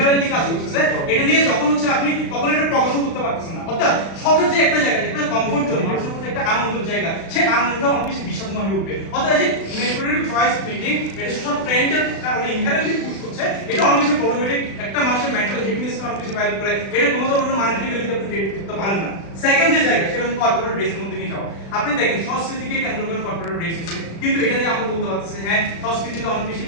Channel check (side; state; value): right; late; 36 ms